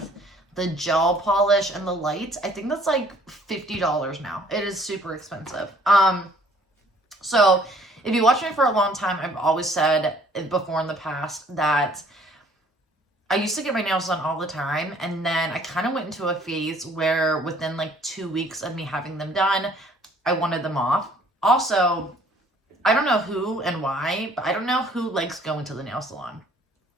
the gel polish and the lights? I think that's like $50 now. It is super expensive. So if you watch me for a long time, I've always said before in the past that I used to get my nails done all the time. And then I kind of went into a phase where within like 2 weeks of me having them done, I wanted them off. Also, I don't know who and why, but I don't know who likes going to the nail salon.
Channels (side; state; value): both; normal; correlation 0.58